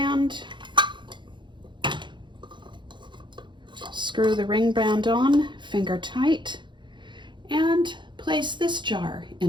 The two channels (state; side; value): late; left; 0.23 ms